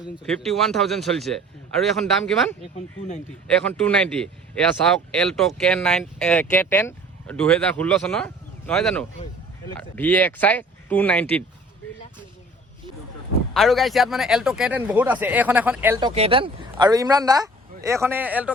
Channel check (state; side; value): normal; both; correlation 0.49